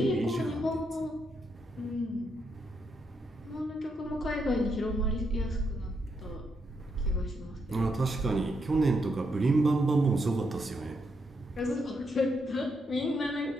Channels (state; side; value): normal; both; correlation 0.79